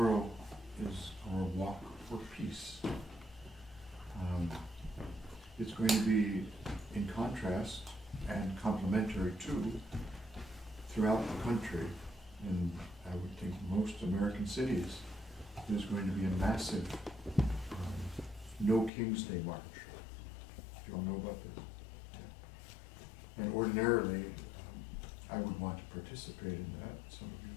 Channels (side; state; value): right; drops out; at 18.9 s